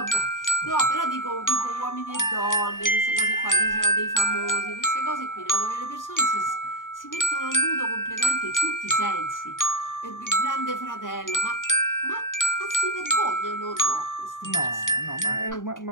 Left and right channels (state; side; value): late; right; 0.88 ms